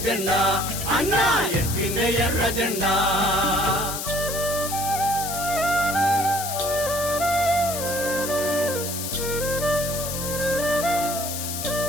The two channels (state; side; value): noise; left; hiss, 5 dB below the sound